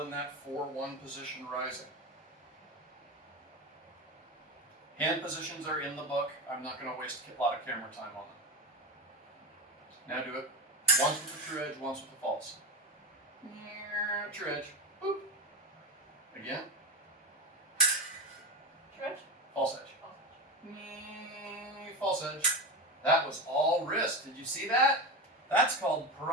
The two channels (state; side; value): normal; both; correlation 0.20